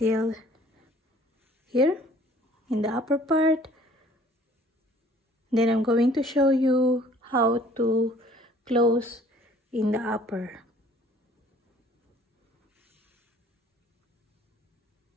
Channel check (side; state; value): both; normal; correlation 0.54